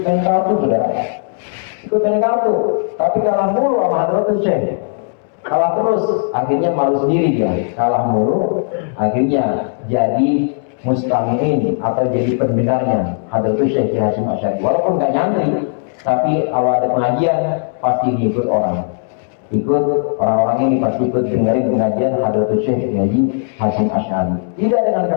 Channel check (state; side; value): silent; right; 67 dB below the other